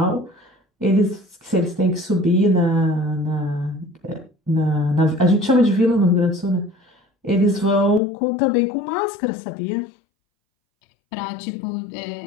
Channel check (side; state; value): right; drops out; at 8.0 s